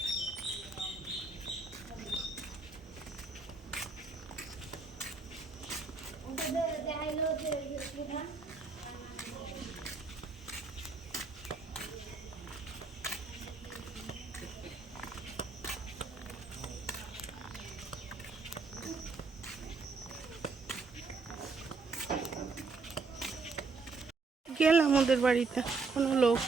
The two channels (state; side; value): quieter; left; 4.2 dB